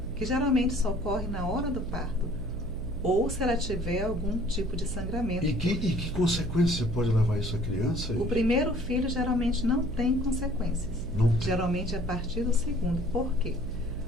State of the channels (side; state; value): right; noise; hum, 8 dB below the sound